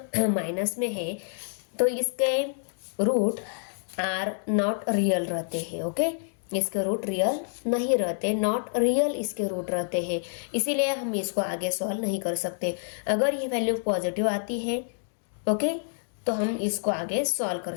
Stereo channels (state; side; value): silent; right; digital silence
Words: माइनस में है तो इसके रूट आर नॉट रियल रहते हैं, ओके। इसके रूट रियल नहीं रहते, नॉट रियल इसके रूट रहते हैं, इसीलिए हम इसको आगे सॉल्व नहीं कर सकते। अगर ये वैल्यू पॉजिटिव आती है, ओके, तो हम इसको आगे सॉल्व कर